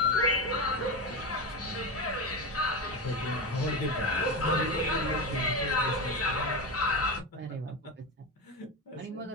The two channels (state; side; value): normal; both; correlation 0.18